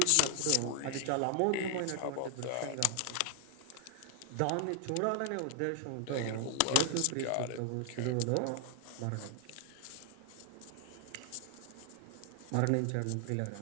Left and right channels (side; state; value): both; different; correlation 0.00